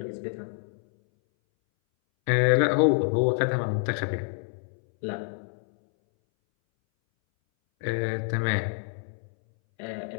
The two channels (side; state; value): right; silent; 60 dB below the other